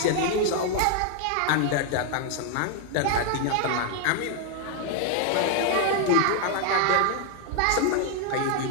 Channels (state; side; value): different; both; correlation 0.00